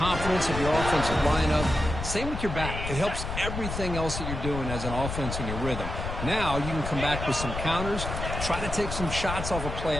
of your offensive lineup. Same with your back. It helps everything else that you're doing as an offense in your rhythm. Now you can come back with some counters, try to take some shots off of play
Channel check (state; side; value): noise; left; rumble, 5 dB below the sound